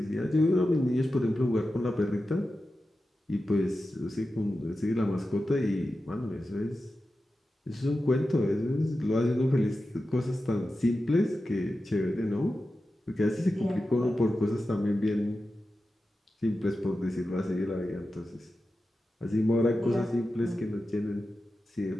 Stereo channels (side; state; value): both; normal; correlation 0.92